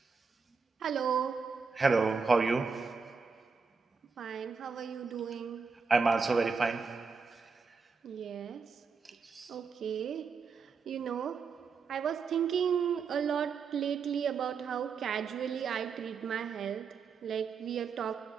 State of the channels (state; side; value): quieter; left; 5.3 dB